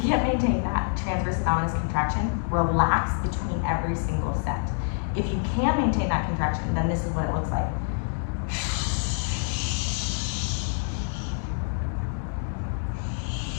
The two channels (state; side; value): silent; right; digital silence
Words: can't maintain that transverse abdominis contraction, relax between every single set. If you can maintain that contraction, then this is what it looks like.